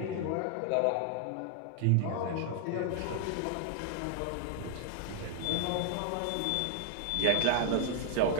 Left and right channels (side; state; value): both; different; correlation 0.00